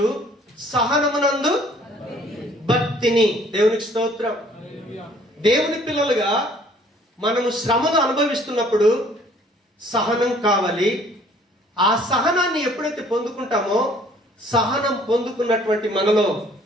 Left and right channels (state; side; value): normal; both; correlation 0.58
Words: సహనమునందు భక్తిని. దేవునికి స్తోత్రం. దేవుని పిల్లలుగా మనము శ్రమను అనుభవిస్తున్నప్పుడు సహనం కావాలి. ఆ సహనాన్ని ఎప్పుడైతే పొందుకుంటామో సహనం పొందుకున్నటువంటి మనలో